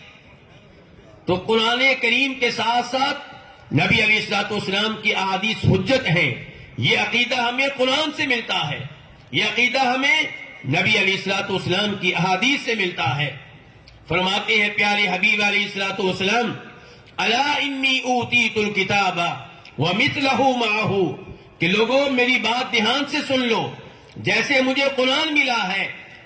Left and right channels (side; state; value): both; identical; correlation 1.00